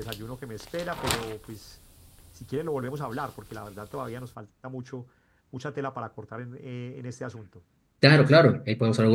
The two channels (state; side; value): identical; both; correlation 1.00